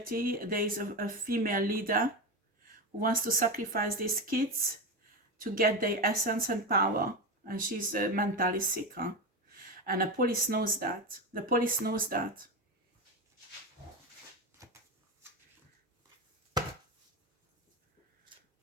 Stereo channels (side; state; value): both; normal; correlation 0.18